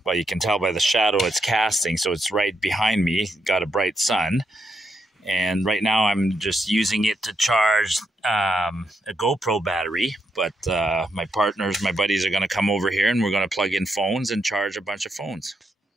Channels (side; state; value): both; normal; correlation 0.80